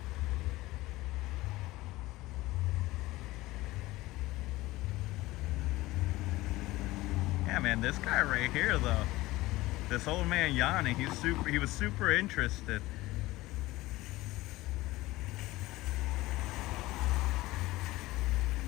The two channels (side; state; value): right; quieter; 18.7 dB